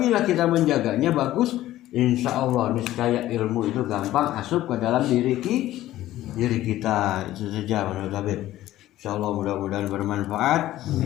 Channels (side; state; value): right; quieter; 14.6 dB